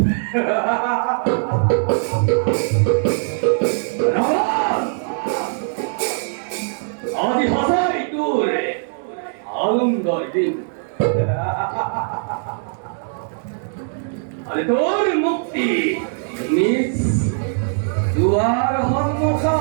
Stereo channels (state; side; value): silent; left; digital silence